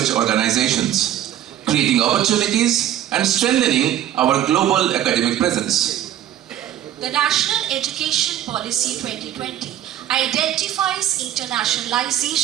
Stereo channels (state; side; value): quieter; left; 11.5 dB